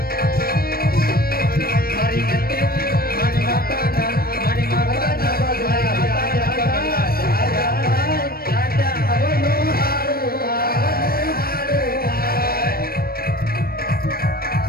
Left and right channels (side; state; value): right; late; 0.44 ms